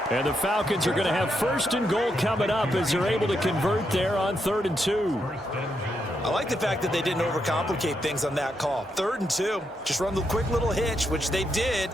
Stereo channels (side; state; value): both; normal; correlation 0.81